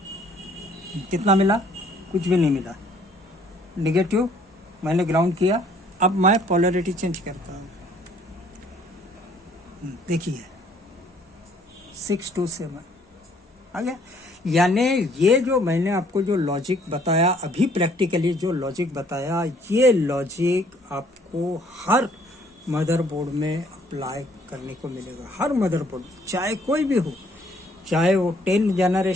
कितना मिला? कुछ भी नहीं मिला, नेगेटिव मैंने ग्राउंड किया। अब मैं पोलैरिटी चेंज करता हूँ, देखिए 627 आ गया। यानी ये जो मैंने आपको जो लॉजिक बताया अभी, प्रैक्टिकली जो लॉजिक बताया, ये लॉजिक आपको हर मदरबोर्ड में अप्लाई करने को मिलेगा, हर मदरबोर्ड, चाहे कोई भी हो, चाहे वो 10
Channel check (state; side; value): normal; both; correlation 0.61